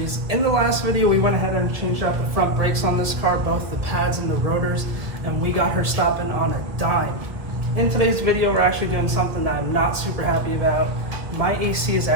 In the last video, we went ahead and changed out the front brakes on this car, both the pads and the rotors, and we got her stopping on a dime. In today's video, we're actually doing something that I'm not super happy about. My AC is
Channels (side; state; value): left; late; 1.4 ms